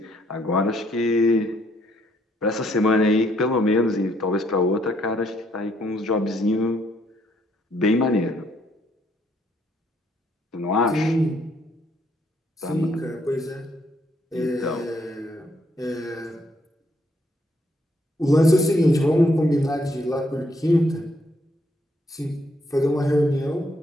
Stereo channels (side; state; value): both; normal; correlation 0.70